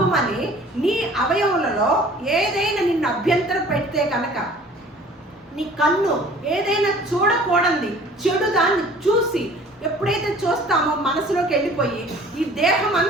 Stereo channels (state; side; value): normal; both; correlation 0.49